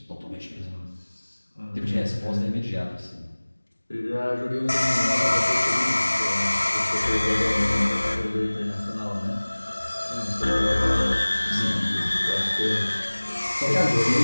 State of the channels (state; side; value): inverted; both; correlation -1.00